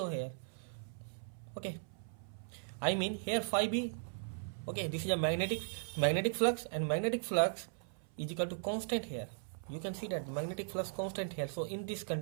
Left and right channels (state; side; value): silent; left; 52 dB below the other